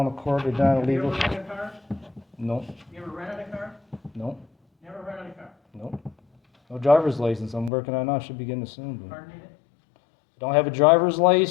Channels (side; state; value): right; drops out; at 7.7 s